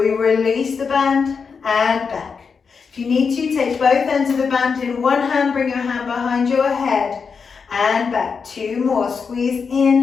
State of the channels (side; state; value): right; quieter; 5.6 dB